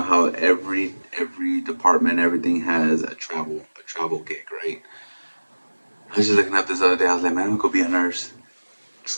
how every department, everything has a travel gig, right? I was just looking up this other day. I was like, man, I'm gonna go be a nurse.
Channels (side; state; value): both; inverted; correlation -1.00